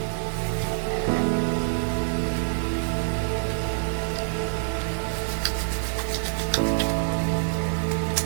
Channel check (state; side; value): silent; left; 61 dB below the other